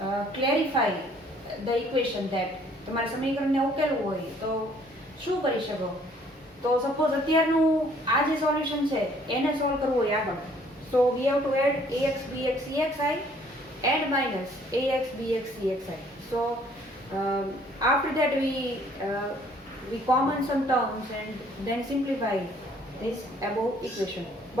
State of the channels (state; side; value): normal; both; correlation 0.60